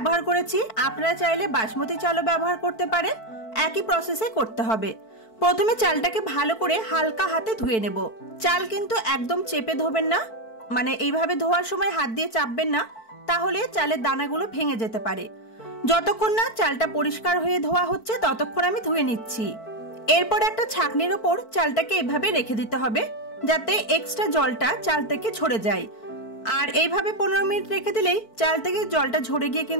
করেছি, আপনারা চাইলে বাসমতি চালও ব্যবহার করতে পারেন। একই প্রসেসে করতে হবে। প্রথমে চালটাকে ভালো করে হালকা হাতে ধুয়ে নেব। চাল কিন্তু একদম চেপে ধোবেন না, মানে এইভাবে ধোয়ার সময় হাত দিয়ে চাপবেন না, তাহলে চালের দানাগুলো ভেঙে যেতে পারে। যতক্ষণ না চালটা পরিষ্কার হয়ে ধোয়া হচ্ছে ততক্ষণ আমি ধুয়ে নিচ্ছি। এরপর একটা ছাঁকনির ওপর চালটাকে এভাবে রেখে দিতে হবে, যাতে এক্সট্রা জলটা চাল থেকে ঝরে যায়। আর এইভাবে 15 মিনিট রেখে দিলেই চাল থেকে জলটা ঝরে গিয়ে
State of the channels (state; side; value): late; right; 4.5 ms